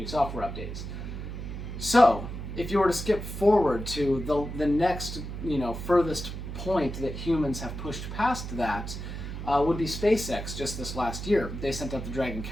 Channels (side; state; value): right; noise; hum, 7 dB below the sound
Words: software updates. So, if you were to skip forward to the next, furthest point that humans have pushed past that, would be SpaceX just this last year. They sent up the Dragon